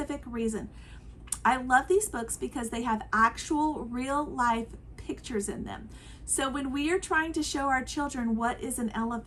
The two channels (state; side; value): identical; both; correlation 1.00